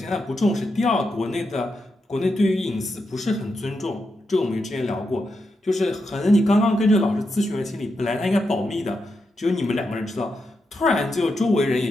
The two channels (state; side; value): normal; both; correlation 0.85